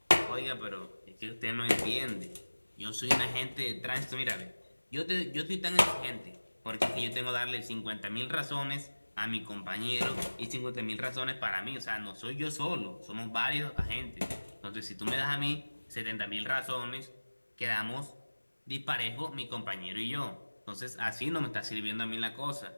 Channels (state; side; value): inverted; both; correlation -1.00